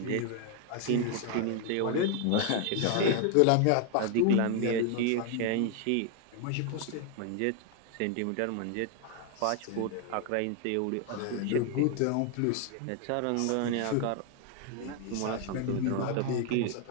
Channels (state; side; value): different; both; correlation 0.01